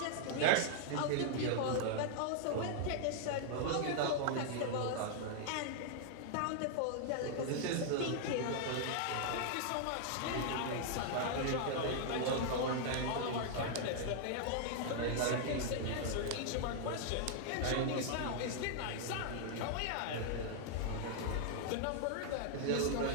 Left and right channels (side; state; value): both; different; correlation -0.01